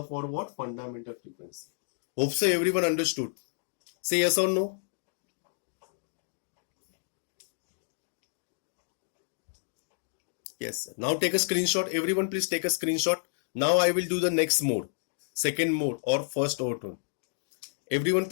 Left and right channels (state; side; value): silent; right; digital silence